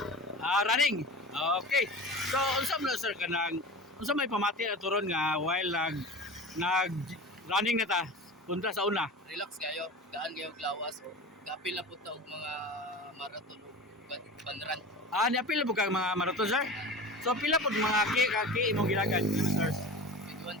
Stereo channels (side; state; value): both; normal; correlation 0.33